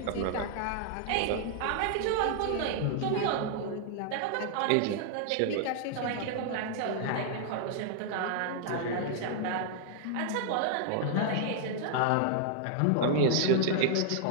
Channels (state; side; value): different; both; correlation 0.00